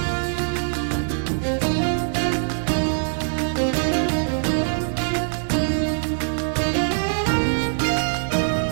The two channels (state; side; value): silent; left; digital silence